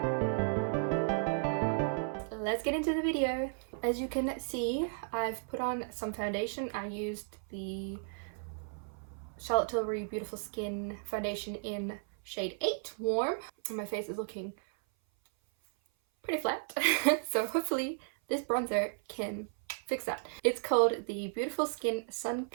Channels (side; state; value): left; silent; 55 dB below the other